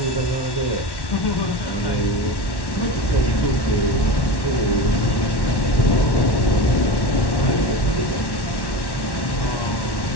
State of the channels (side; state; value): right; late; 1.1 ms